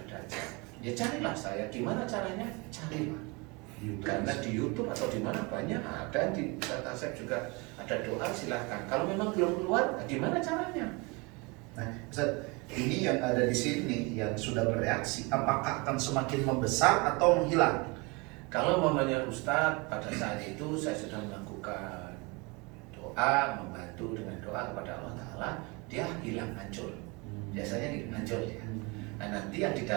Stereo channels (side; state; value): left; quieter; 27.9 dB